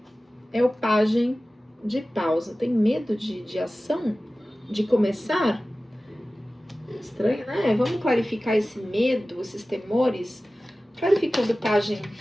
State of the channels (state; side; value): normal; both; correlation 0.96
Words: é o pajem de pausa. Tem medo de ação? De começar? Estranho, né? Vamos clarificar esse medo, esses temores, clarificando o pajem